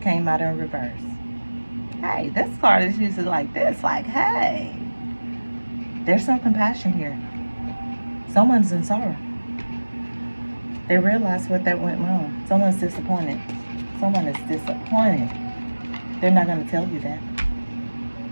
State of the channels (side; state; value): both; inverted; correlation -1.00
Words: came out in reverse. Hey, this card is usually like this. Like, hey, there's some compassion here. Someone's in sorrow. They realize what that went wrong. Someone's disappointed. Someone is disappointed. They're not going to tell you that.